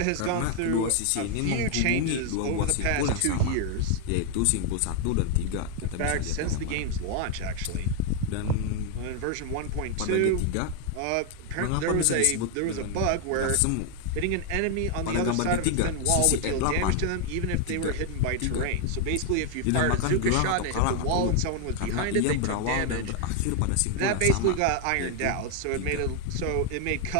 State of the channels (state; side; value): different; both; correlation 0.01